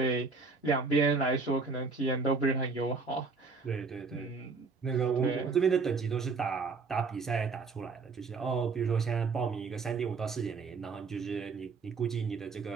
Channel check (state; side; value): quieter; left; 4.5 dB